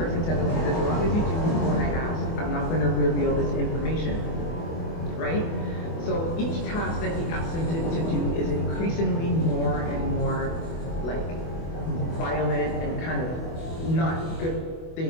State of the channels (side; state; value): right; late; 24 ms